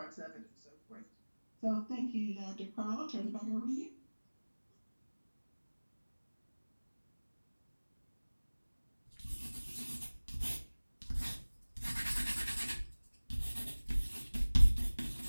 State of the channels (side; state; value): both; inverted; correlation -1.00